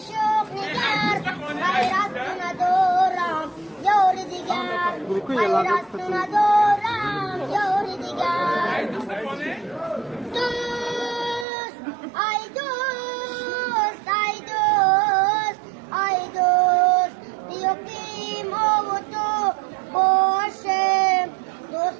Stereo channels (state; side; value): drops out; left; at 11.5 s